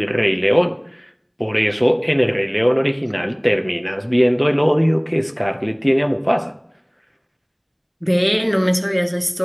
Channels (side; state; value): both; identical; correlation 1.00